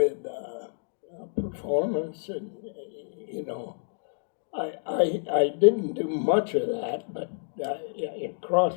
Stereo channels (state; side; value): silent; right; digital silence